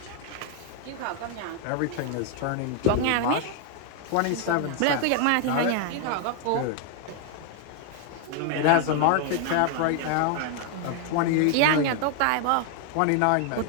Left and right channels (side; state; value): both; different; correlation 0.00